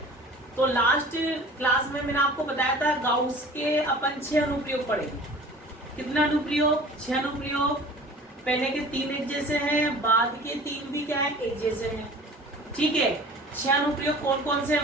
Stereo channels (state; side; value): normal; both; correlation 0.44